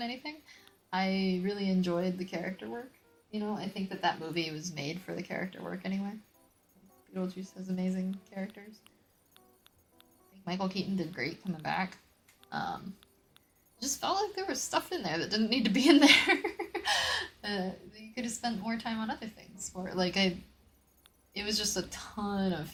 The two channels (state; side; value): identical; both; correlation 1.00